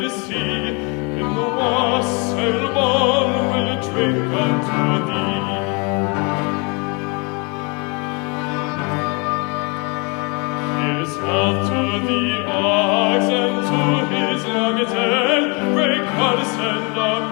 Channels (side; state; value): right; quieter; 31.9 dB